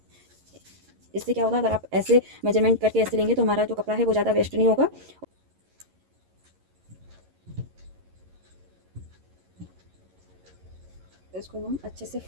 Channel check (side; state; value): left; late; 11 ms